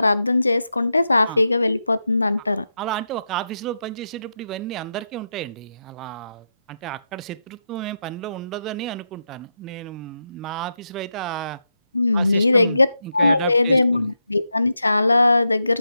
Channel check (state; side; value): inverted; both; correlation -0.86